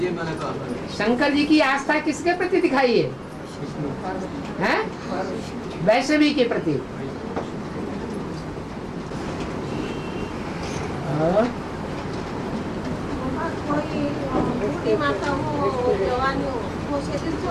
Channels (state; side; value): identical; both; correlation 1.00